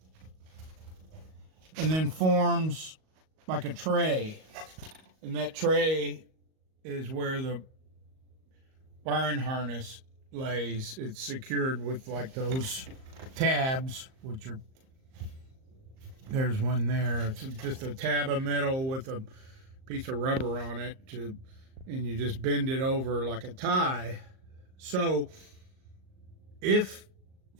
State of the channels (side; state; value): left; late; 38 ms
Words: and then forms like a tray. And that tray is where the wiring harness lays. It's secured with like those tabs, which are, there's one there. It's just a tab of metal with a piece of rubber on it and you just bend it over like a tie. So if